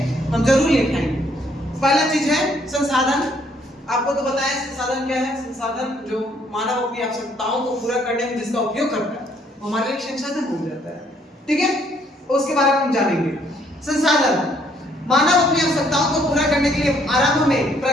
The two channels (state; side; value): normal; both; correlation 0.66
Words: हम जरूर लिखाएंगे। पहला चीज है संसाधन। आपको तो बताया संसाधन क्या है। संसाधन जो मानव अपनी आवश्यकताओं को पूरा करने में जिसका उपयोग करता है वो हमारे लिए संसाधन हो जाता है, ठीक है। उसके बारे में हम जानेंगे। संसाधन, मानव अपनी आवश्यकताओं को पूरा करने के लिए आरंभ में